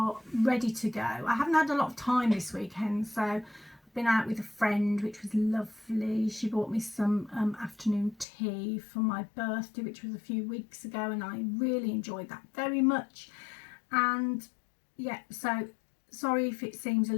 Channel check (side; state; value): right; drops out; at 8.2 s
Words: ready to go. I haven't had a lot of time this weekend, so I've been out with a friend, which was lovely. She bought me some afternoon tea for my birthday, which was a few weeks ago, and I really enjoyed that very much. And yeah, so sorry if it seems a